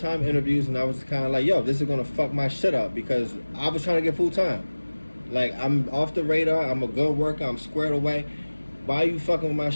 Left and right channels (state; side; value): inverted; both; correlation -1.00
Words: interviews, and I was kind of like, yo, this is going to fuck my shit up because I was trying to get full-time. I'm off the radar. I'm a good worker. I'm squared away. Why are you fucking with my